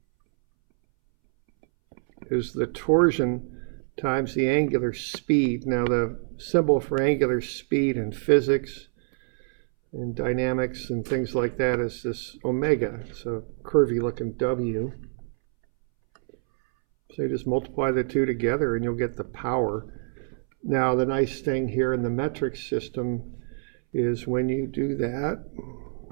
is the torsion times the angular speed. Now the symbol for angular speed in physics, And dynamics and things like that is this omega. It's a curvy looking W. So you just multiply the two together and you'll get the power. Now the nice thing here in the metric system is when you do that,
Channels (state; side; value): silent; left; 61 dB below the other